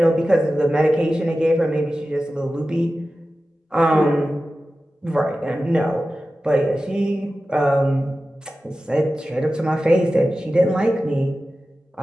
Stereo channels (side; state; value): both; normal; correlation 0.94